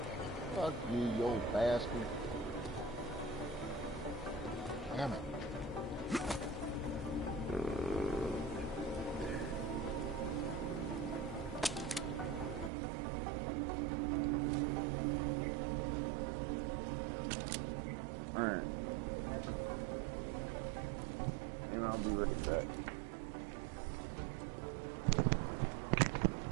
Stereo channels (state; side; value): drops out; left; at 12.7 s